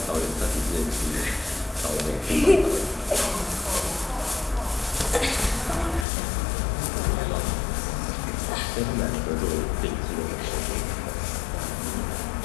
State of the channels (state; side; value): drops out; right; at 6.1 s